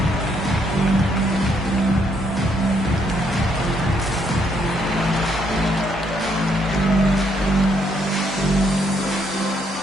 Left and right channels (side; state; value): both; normal; correlation 0.72